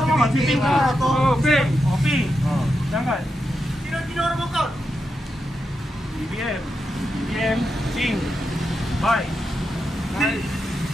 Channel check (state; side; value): normal; both; correlation 0.86